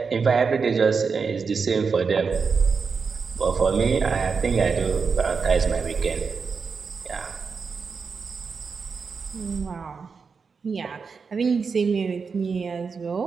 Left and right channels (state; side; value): quieter; left; 5.3 dB